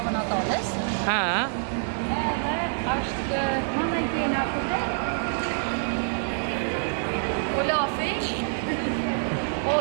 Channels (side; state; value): left; silent; 61 dB below the other